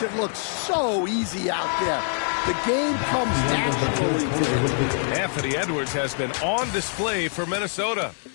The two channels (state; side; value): silent; right; 56 dB below the other